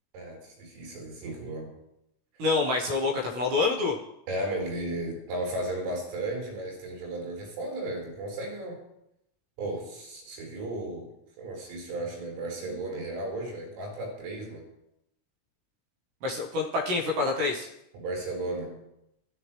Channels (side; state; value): left; late; 17 ms